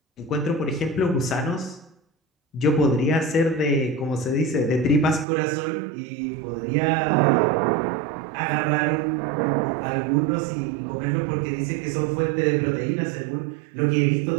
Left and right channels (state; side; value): drops out; left; at 5.2 s